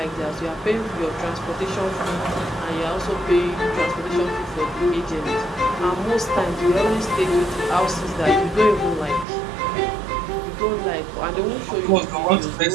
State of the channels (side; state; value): left; drops out; at 9.2 s